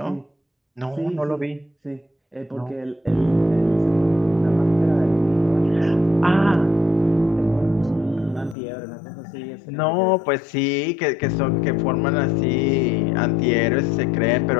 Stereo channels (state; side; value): drops out; right; at 8.6 s